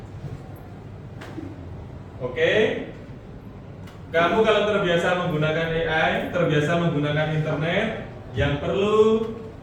Oke, kamu kalau terbiasa menggunakan AI, terbiasa menggunakan internet, yang perlu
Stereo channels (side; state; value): both; identical; correlation 1.00